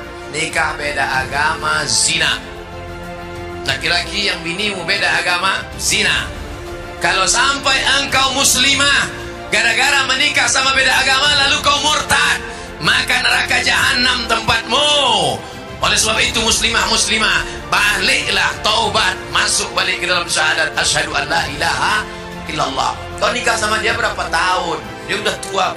Nikah beda agama zina. Laki-laki yang binimu beda agama, zina. Kalau sampai engkau muslimah gara-gara menikah sama beda agama lalu kau murtad, maka neraka jahanam tempatmu. Oleh sebab itu muslimah, baliklah, taubat, masuk balik ke dalam syahadat asyhadu an la ilaha illallah. Kau nikah sama dia berapa tahun? Dia udah tua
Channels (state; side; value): identical; both; correlation 1.00